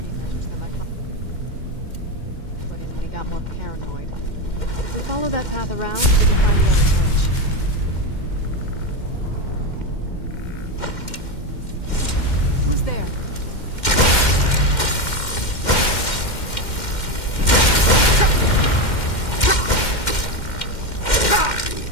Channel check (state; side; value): late; right; 2.1 ms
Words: measures that my father put in when he got more paranoid. If we follow that path around, we can find the other switch. Who's there?